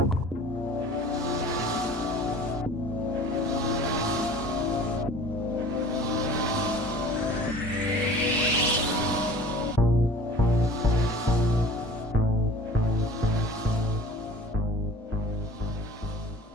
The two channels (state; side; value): normal; both; correlation 0.45